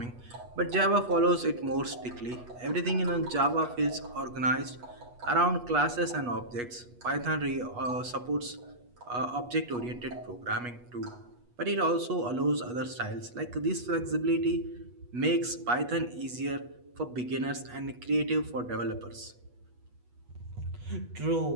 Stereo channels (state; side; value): late; left; 8.3 ms